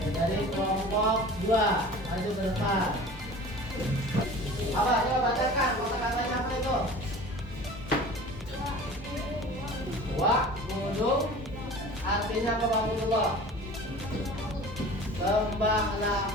Dari kelompok 2 maju ke depan. Apa? Coba bacakan kata-katanya apa itu? Wa'budu artinya apa, Wa'budullah? Sembahlah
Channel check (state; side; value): normal; both; correlation 0.41